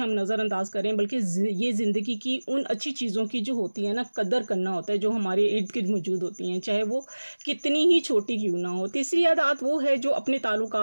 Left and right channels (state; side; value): inverted; both; correlation -1.00